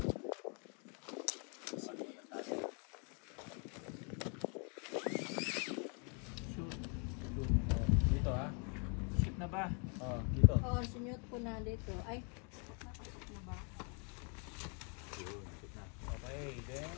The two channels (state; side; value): quieter; right; 37.6 dB